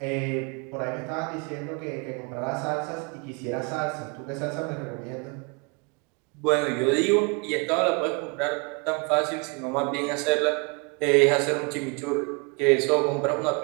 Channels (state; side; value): quieter; left; 32.9 dB